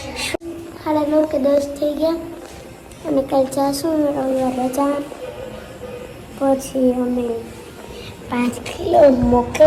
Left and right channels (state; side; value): identical; both; correlation 1.00